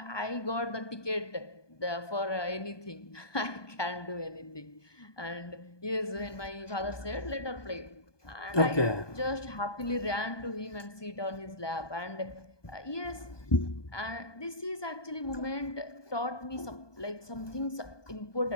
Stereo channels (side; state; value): right; late; 1.2 ms